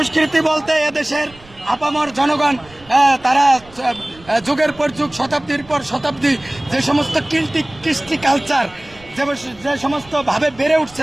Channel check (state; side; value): noise; right; rumble, 24 dB below the sound